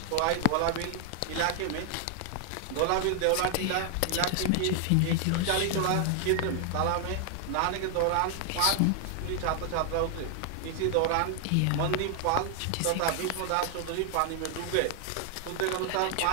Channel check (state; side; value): different; both; correlation 0.00